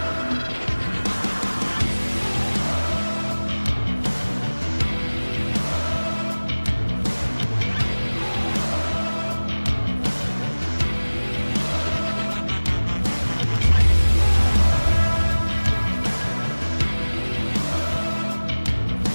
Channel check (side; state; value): both; inverted; correlation -1.00